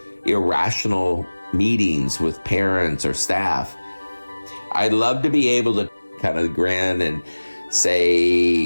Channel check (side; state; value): both; inverted; correlation -1.00